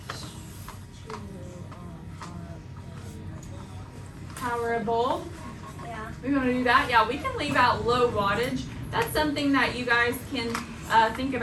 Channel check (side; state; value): both; identical; correlation 1.00